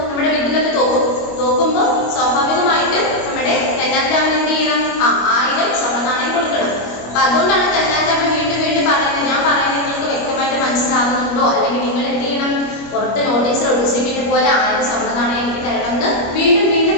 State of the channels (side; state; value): right; late; 25 ms